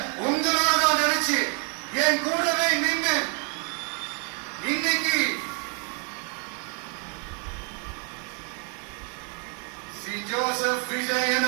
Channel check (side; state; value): left; quieter; 38.4 dB